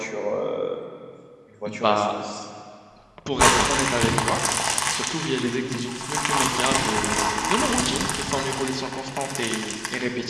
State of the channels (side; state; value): both; identical; correlation 1.00